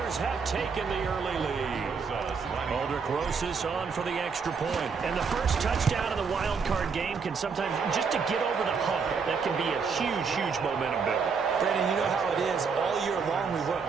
have taken the early lead. Cedric Rosas on for the extra point. And the first touchdown of the wild card game can sometimes, just to get over the hump, that can be a huge, huge momentum builder. Brandon, you know how it is. All year long we work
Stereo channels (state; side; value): quieter; left; 5.5 dB